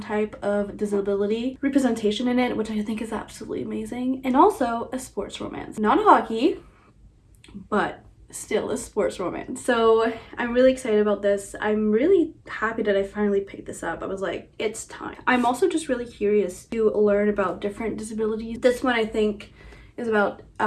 of disability representation in it, which I think is absolutely amazing. And also a sports romance, not hockey, but still a sports romance. So I'm really excited about this. I'm really happy that I finally picked this up. I was like, it's time. I'm also just really curious to learn about different disabilities. This one I think is about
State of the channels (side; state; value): both; identical; correlation 1.00